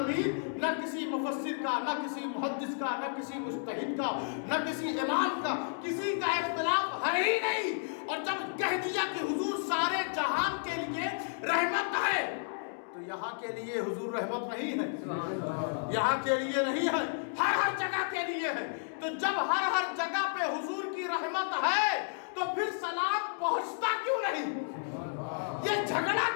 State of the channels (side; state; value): right; silent; digital silence